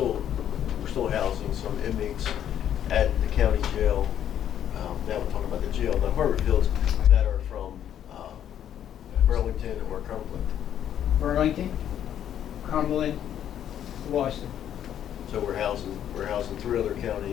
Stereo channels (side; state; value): right; quieter; 10.2 dB